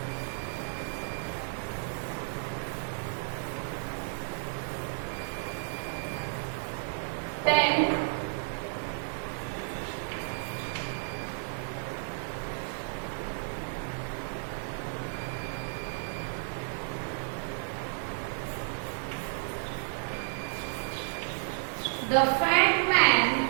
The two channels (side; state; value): left; silent; 56 dB below the other